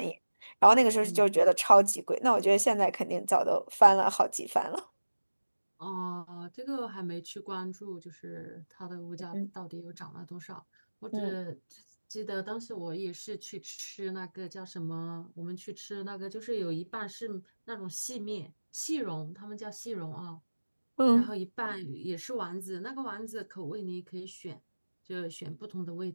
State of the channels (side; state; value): both; inverted; correlation -1.00